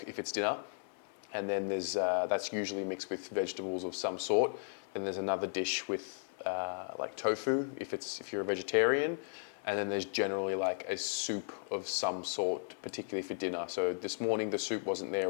if it's dinner. And then there's that's usually mixed with vegetables of some sort. Then there's another dish with like tofu if you're a vegetarian. And then there's generally like a soup of some sort, particularly for dinner. So this morning the soup wasn't there. It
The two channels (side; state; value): right; silent; 54 dB below the other